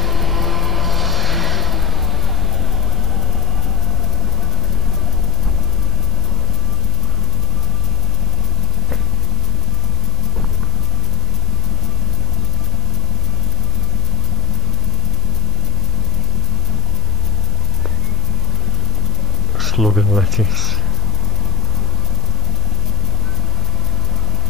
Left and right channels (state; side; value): noise; right; hum, 9 dB below the sound